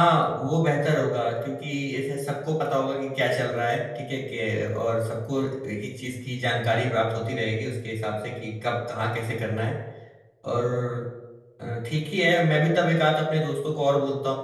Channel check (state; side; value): identical; both; correlation 1.00